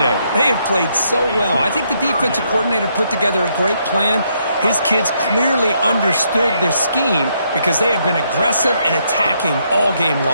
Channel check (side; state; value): both; inverted; correlation -0.74